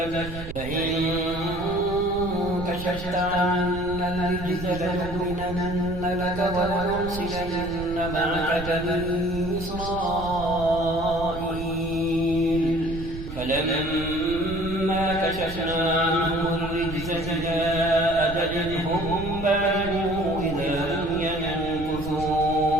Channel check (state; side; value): noise; right; rumble, 10 dB below the sound